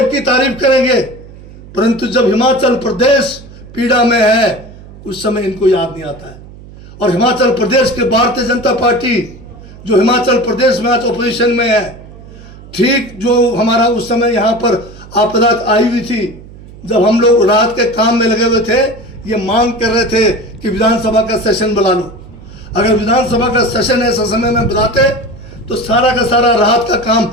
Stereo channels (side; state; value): right; noise; hum, 18 dB below the sound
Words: की तारीफ करेंगे। परंतु जब हिमाचल प्रदेश पीड़ा में है, उस समय इनको याद नहीं आता है। और हिमाचल प्रदेश के भारतीय जनता पार्टी जो हिमाचल प्रदेश में आज ऑपोजिशन में है, ठीक जो हमारा उस समय यहाँ पर आपदा आई हुई थी, जब हम लोग रात के काम में लगे हुए थे, ये मांग कर रहे थे कि विधानसभा का सेशन बुला लो। अगर विधानसभा का सेशन ऐसा समय में बुलाते तो सारा का सारा राहत का काम